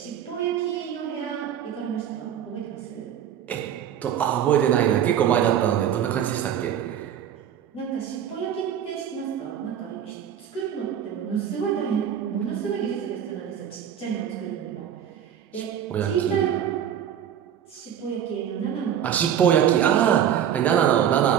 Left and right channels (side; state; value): left; quieter; 9.5 dB